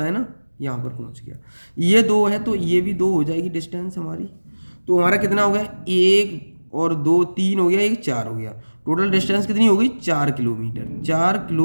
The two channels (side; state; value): both; inverted; correlation -1.00